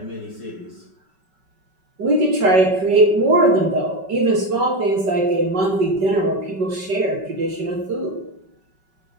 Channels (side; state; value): left; late; 5.3 ms